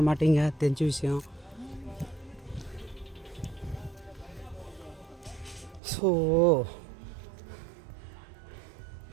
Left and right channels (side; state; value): left; drops out; at 5.8 s